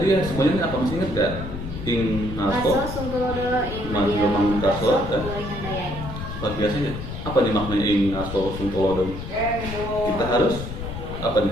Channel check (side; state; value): left; noise; rumble, 8 dB below the sound